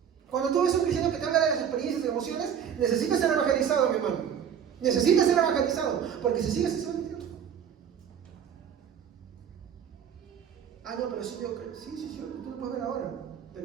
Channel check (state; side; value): quieter; left; 8.3 dB